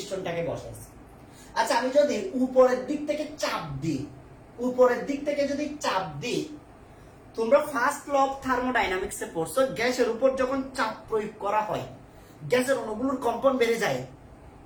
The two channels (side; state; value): both; identical; correlation 1.00